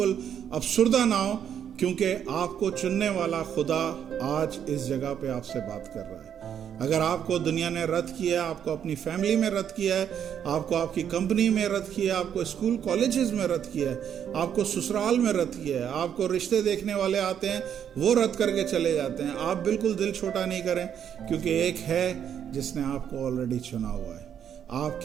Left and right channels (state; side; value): quieter; left; 8.9 dB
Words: अफसुर्दा ना हो, क्योंकि आपको चुनने वाला खुदा आज इस जगह पे आपसे बात कर रहा है। अगर आपको दुनिया ने रद्द किया, आपको अपनी फैमिली में रद्द किया है, आपको आपकी कंपनी में रद्द किया है, आपको स्कूल कॉलेजेस में रद्द किया है, आपको ससुराल में रद्द किया है, आपको रिश्ते देखने वाले आते हैं वो रद्द करके चले जाते हैं, आप बिल्कुल दिल छोटा नहीं करें, क्योंकि एक है जिसने आपको ऑलरेडी चुना हुआ है।